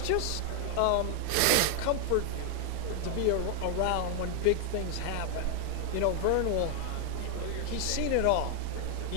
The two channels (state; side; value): different; both; correlation 0.00